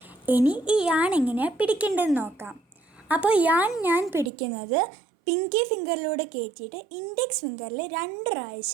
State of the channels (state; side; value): drops out; left; at 4.3 s